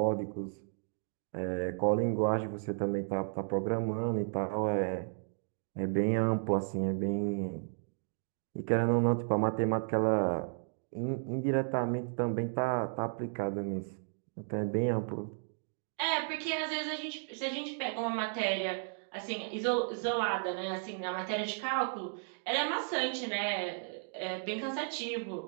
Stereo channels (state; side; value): silent; left; digital silence